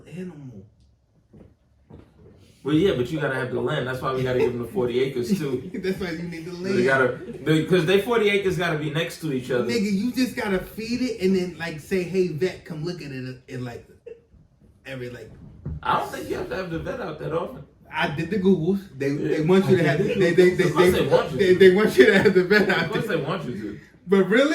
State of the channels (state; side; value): identical; both; correlation 1.00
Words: animal. Well, yeah, but you gotta have the land. That's why we gotta give them the 40 acres too. That's why you need the So land. because they 40 acres gotta be next to each other. Nigga, you just gotta feed it and then like say, hey vet, come look at it in like every like. I don't think you have to have the vet out that often. I did the Googles. They want you to have they want you to have the vet Of out course there. they want you to. But